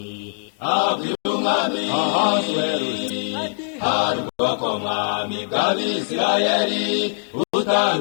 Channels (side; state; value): right; silent; digital silence